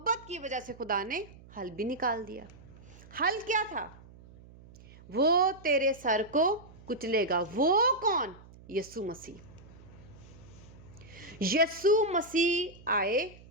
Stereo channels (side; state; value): right; noise; hum, 21 dB below the sound